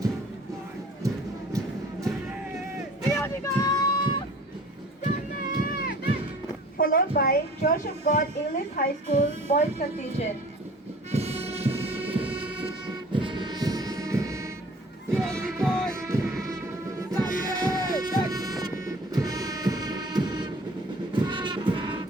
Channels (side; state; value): both; normal; correlation 0.47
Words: Followed by Church of God English High School Boys Contingent.